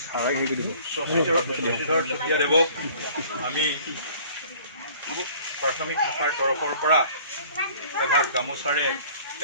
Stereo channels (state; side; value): inverted; both; correlation -0.52